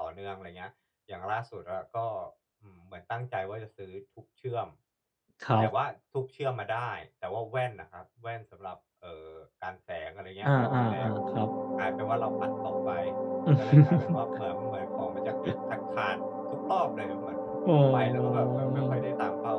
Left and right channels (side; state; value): both; identical; correlation 1.00